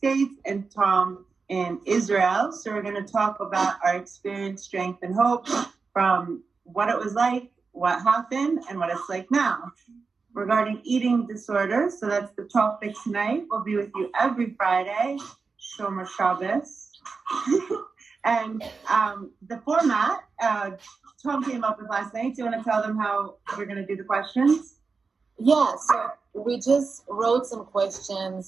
and Tohm in Israel. So we're going to talk about our experience, strength, and hope from what it was like, what happened, and what it's like now. Regarding eating disorders, so that's the topic tonight. We'll be with you every Friday, Shomer Shabbos. And the format, Tom came up with last night. Do you want to tell them how we're going to do the questions? Yeah, so we just wrote some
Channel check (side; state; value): left; quieter; 4.7 dB